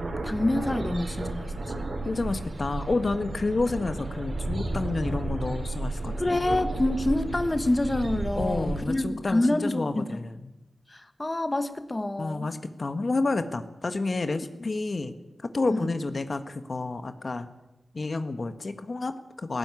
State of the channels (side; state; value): both; normal; correlation 0.96